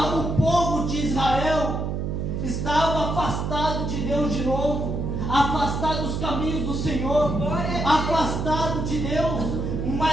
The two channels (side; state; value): right; noise; hum, 2 dB below the sound